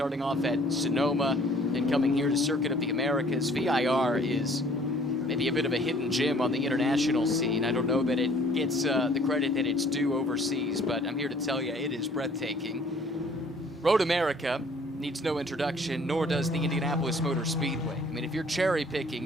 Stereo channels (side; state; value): both; normal; correlation 0.56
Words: off at Sonoma, and coming here to Circuit of the Americas. VIR is maybe a bit of a hidden gem on the international scene. I don't know that it gets the credit that it's due overseas, but I'm here to tell you it is breathtaking. Road America needs no introduction, nor does the Indianapolis Motor Speedway. I mean, if you're cherry